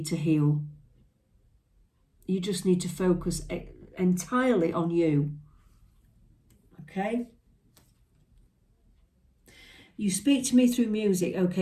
to heal. You just need to focus entirely on you. Okay? You speak to me through music.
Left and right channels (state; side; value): identical; both; correlation 1.00